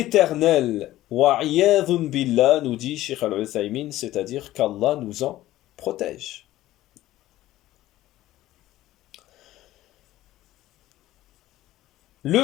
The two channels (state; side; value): quieter; right; 15.2 dB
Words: Wa'iyadhun billah, nous dit Sheikh Al-Uthaymin, c'est-à-dire qu'Allah nous en protège. Le